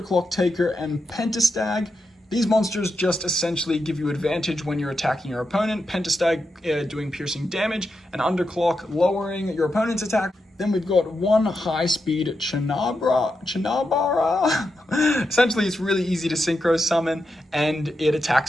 Taker and Pentastag. These monsters just essentially give you advantage when you're attacking your opponent. Pentastag doing piercing damage, and Underclock lowering your opponent's attack. Then we've got 1 high-speed Chinabara. Essentially, it's really easy to synchro summon, and it attacks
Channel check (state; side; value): normal; both; correlation 0.86